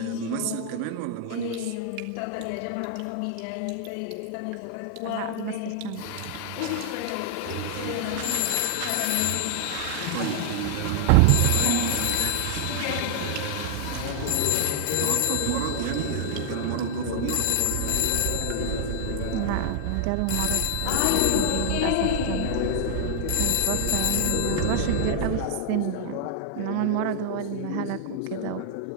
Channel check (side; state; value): both; different; correlation 0.00